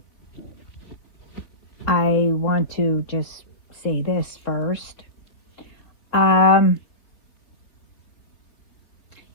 I want to just say this first. Um,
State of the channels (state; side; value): late; right; 4.0 ms